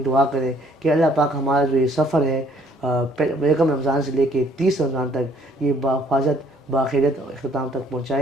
دعا کریں کہ اللہ پاک ہمارا جو یہ سفر ہے یکم رمضان سے لے کے 30 رمضان تک یہ بحفاظت باخیرت اختتام تک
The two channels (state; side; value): normal; both; correlation 0.62